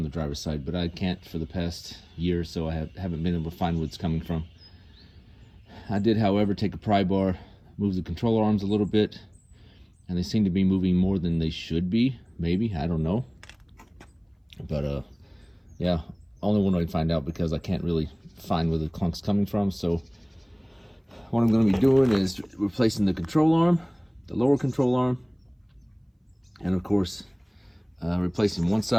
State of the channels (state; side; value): identical; both; correlation 1.00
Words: the driver's side, but I can't for the past year or so. I haven't been able to find where it's coming from. I did, however, take a pry bar, move the controller arms a little bit, and they seem to be moving more than they should be. Maybe, I don't know. But yeah, only one way to find out because I can't really find where the clunk's coming from. So what I'm going to be doing is replacing the control arm, the lower control arm, and of course replacing one